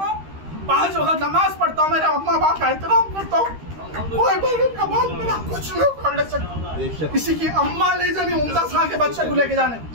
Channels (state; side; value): late; left; 13 ms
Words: 5 वक्त नमाज पढ़ता हूँ, मेरे अम्मा बाप का एहतराम करता हूँ। कोई बगैर का बाल मेरा कुछ नहीं कर ले सकता। किसी की अम्मा नहीं जानी मुमताज खान के बच्चे को लेके जाने,